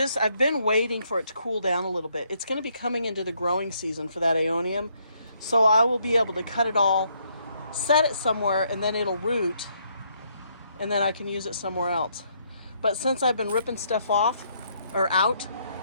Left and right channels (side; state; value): both; inverted; correlation -0.72